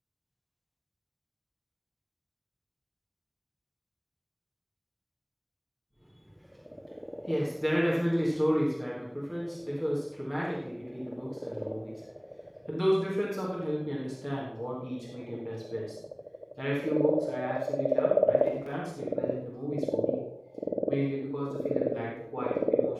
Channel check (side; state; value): both; identical; correlation 1.00